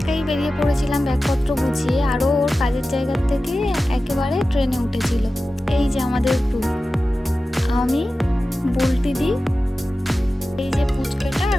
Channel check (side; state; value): both; normal; correlation 0.94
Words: বেরিয়ে পড়েছিলাম ব্যাগপত্র গুছিয়ে, আরও ওর কাজের জায়গার থেকে একেবারে ট্রেনে উঠেছিল। এই যে আমাদের গ্রুপ, আমি, বুলটি দি, এই যে পুচকেটা